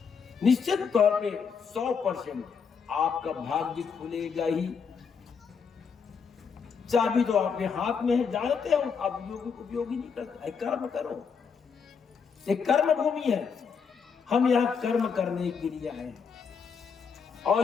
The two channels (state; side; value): quieter; right; 6.1 dB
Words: निश्चित तौर पे 100% आपका भाग्य खुलेगा ही। चाबी तो आपके हाथ में है, जानते हो आप उपयोगी नहीं करते। कर्म करो, एक कर्म भूमि है। हम यहाँ कर्म करने के लिए आए,